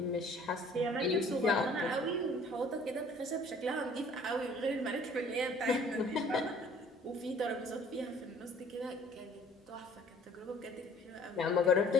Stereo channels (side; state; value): both; normal; correlation 0.54